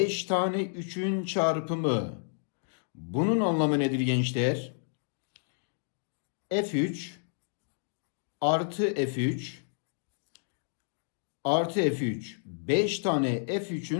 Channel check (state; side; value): silent; right; digital silence